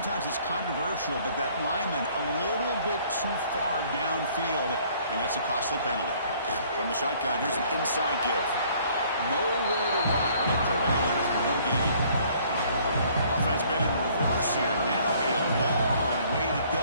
it's controversial, but that lineman a little bit too far downfield, and that's a costly penalty. From the shotgun, here's an inside give. Nowhere to run, and Corrales for no gain. Offense been in reverse here. Now a long way to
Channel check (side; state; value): both; inverted; correlation -0.59